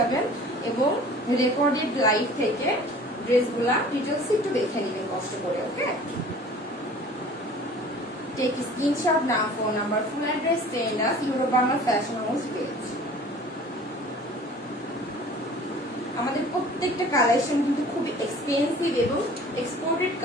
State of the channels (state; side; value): normal; both; correlation 0.46